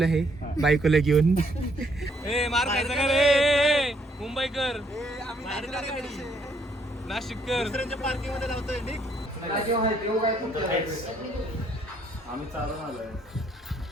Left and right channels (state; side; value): normal; both; correlation 0.69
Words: आहे बायकोला घेऊन. मार खायचा का रे मुंबईकर, नाशिककर पार्किंग मध्ये लावतोय. आम्ही चालून आलोय.